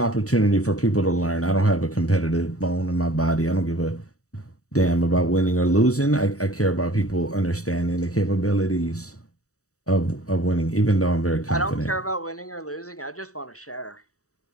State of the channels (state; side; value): late; right; 0.65 ms